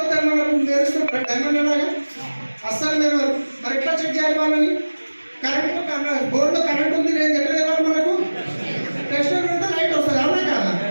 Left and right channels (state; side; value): inverted; both; correlation -1.00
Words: మనకు మెరుస్తుంటారు డైమండ్ లాగా. అస్సలు మీరు మరి ఎట్లా చెక్ చేయాలి వాళ్ళని? కరెంట్ బోర్డులో కరెంట్ ఉంది, నేను ఎట్లా వెళ్ళాలి? మనకు టెస్ట్ పెడితే లైట్ వస్తుంది, అవునా కదా?